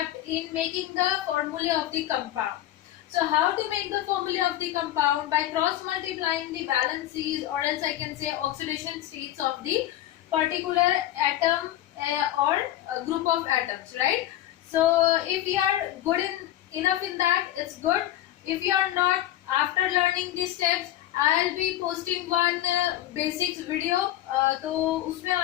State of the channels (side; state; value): right; quieter; 13.6 dB